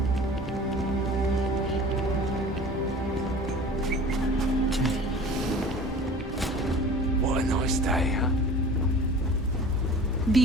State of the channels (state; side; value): normal; both; correlation 0.41